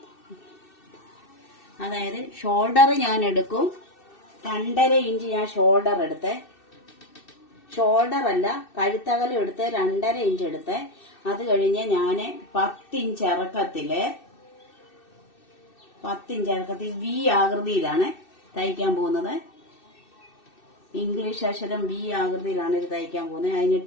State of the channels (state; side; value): late; right; 2.6 ms